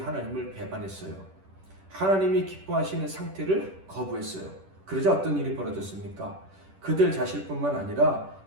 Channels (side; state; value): left; late; 10 ms